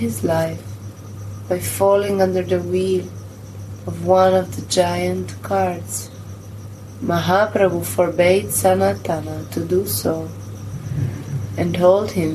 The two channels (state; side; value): identical; both; correlation 1.00